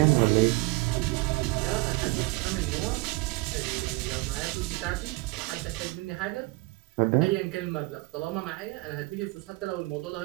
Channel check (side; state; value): left; quieter; 23.7 dB